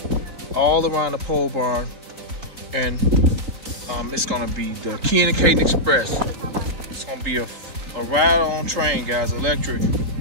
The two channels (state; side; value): late; left; 3.7 ms